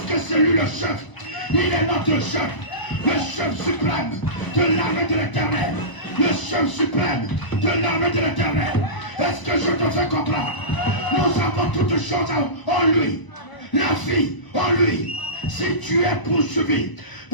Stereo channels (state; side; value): late; right; 1.0 ms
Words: que c'est lui le chef. Il est notre chef. Le chef suprême de l'armée de l'Éternel. Le chef suprême de l'armée de l'Éternel. Est-ce que je te fais comprendre? Nous avons toutes choses en lui. La vie en lui. Si tu es poursuivi